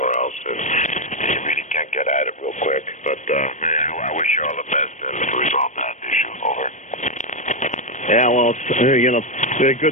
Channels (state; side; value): late; right; 0.35 ms